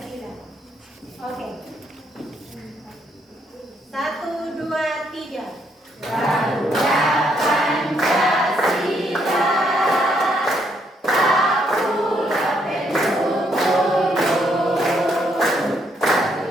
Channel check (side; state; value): both; normal; correlation 0.72